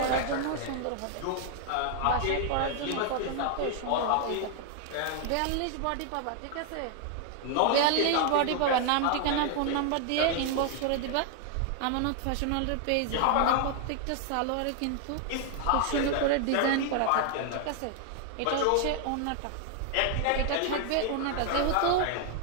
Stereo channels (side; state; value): both; different; correlation 0.00